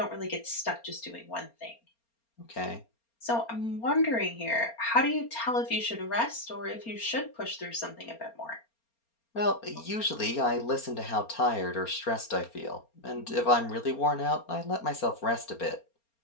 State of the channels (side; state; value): right; late; 4.3 ms